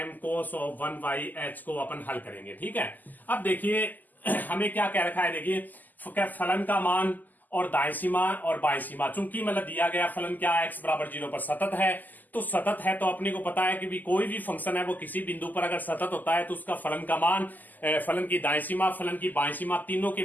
cos of 1/h को अपन हल करेंगे। ठीक है, अब देखिए हमें क्या कह रखा है, देखिए फलन का मान और दाएं सीमा और बाएं सीमा, चूंकि मतलब दिया गया फलन क्या है, x बराबर 0 पर सतत है, तो सतत है तो अपने को पता है कि भी कोई भी फंक्शन है वो किसी बिंदु पर अगर सतत होता है तो उसका फलन का मान, फलन की दाएं सीमा, फलन की बाएं सीमा, तीनों के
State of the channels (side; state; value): right; late; 0.084 ms